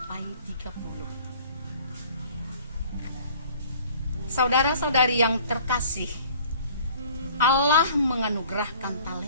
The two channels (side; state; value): both; inverted; correlation -0.51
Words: 30. Saudara-saudari yang terkasih, Allah menganugerahkan